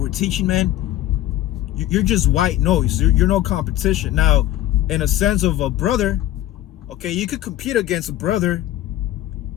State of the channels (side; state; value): right; quieter; 13.7 dB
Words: we're teaching, man, you're just white noise. You're no competition. Now, in a sense of a brother, okay, you could compete against a brother,